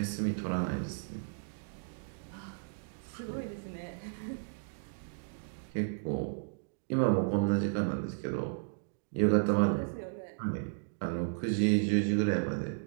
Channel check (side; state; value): left; silent; digital silence